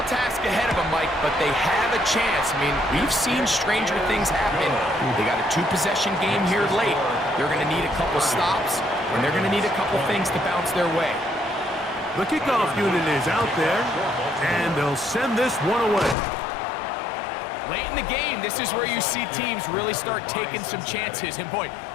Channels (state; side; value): drops out; right; at 16.2 s